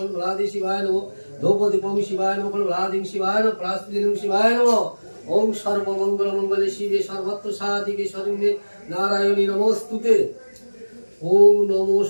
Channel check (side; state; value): both; inverted; correlation -1.00